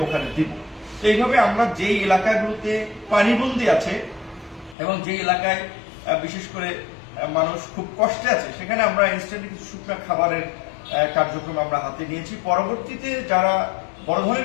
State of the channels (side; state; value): right; drops out; at 4.8 s